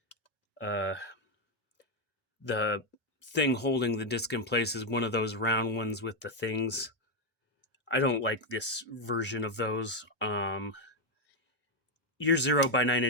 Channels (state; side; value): normal; both; correlation 0.04